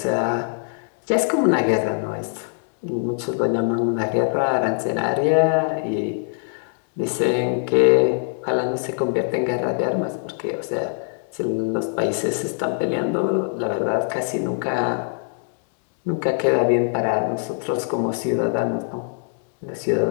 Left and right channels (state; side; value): silent; right; 64 dB below the other